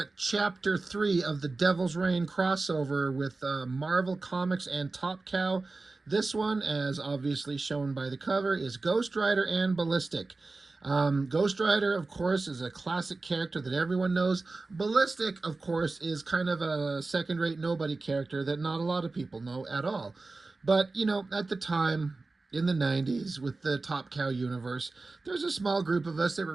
at Chapter 3 of the Devil's Reign crossover with Marvel Comics and Top Cow. This one, as obviously shown by the cover, is Ghost Rider and Ballistic. Ghost Rider, of course, is a classic character that everyone knows. Ballistic, of course, is kind of a second-rate nobody character that not a lot of people know at all. But, you know, at the time, in the 90s with the Top Cow universe, there's a small group of us that were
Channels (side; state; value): left; quieter; 3.5 dB